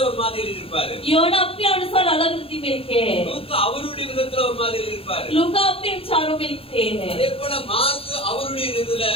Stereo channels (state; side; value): late; right; 0.27 ms